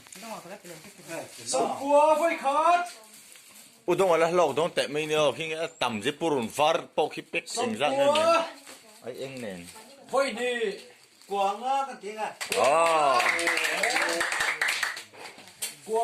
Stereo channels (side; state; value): both; identical; correlation 1.00